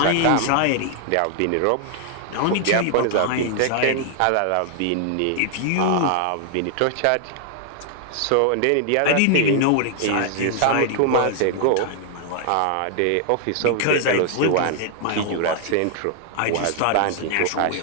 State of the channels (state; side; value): different; both; correlation 0.00